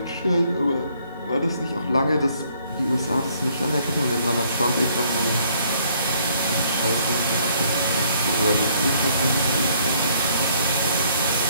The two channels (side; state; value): both; inverted; correlation -0.64